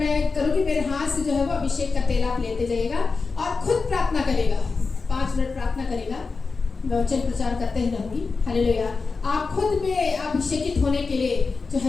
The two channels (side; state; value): right; quieter; 4.4 dB